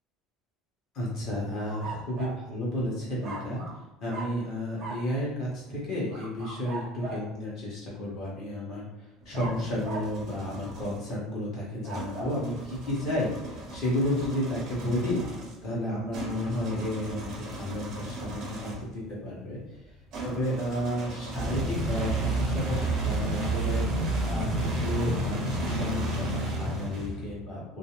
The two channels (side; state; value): both; normal; correlation 0.41